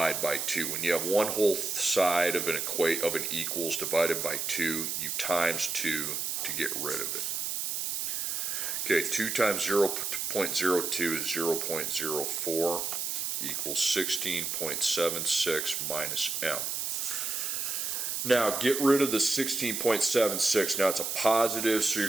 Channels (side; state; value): right; noise; hiss, 2 dB below the sound